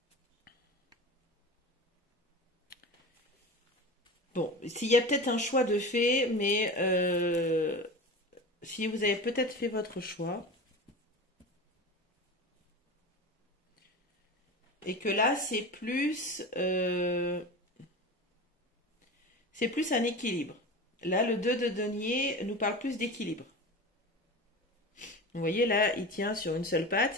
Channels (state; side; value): normal; both; correlation 0.30